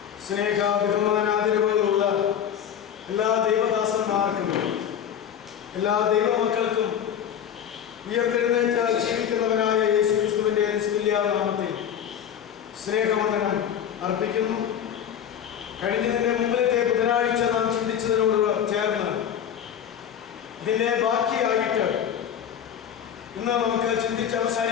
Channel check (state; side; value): quieter; right; 9.1 dB